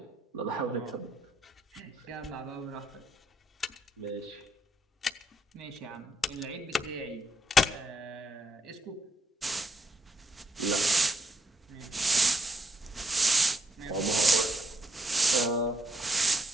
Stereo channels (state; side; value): normal; both; correlation 0.77